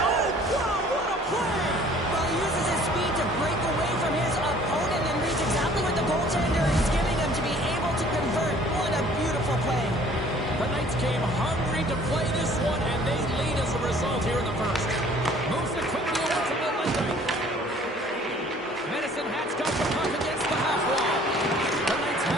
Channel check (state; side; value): normal; both; correlation 0.54